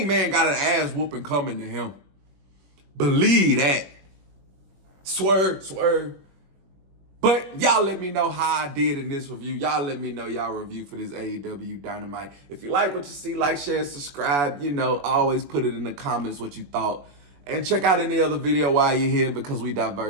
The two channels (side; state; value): left; late; 21 ms